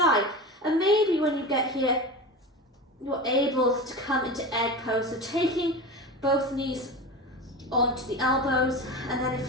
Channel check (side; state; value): both; normal; correlation 0.28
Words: And maybe when you get here, you're able to come into egg pose. So taking both knees onto the elbows, and then if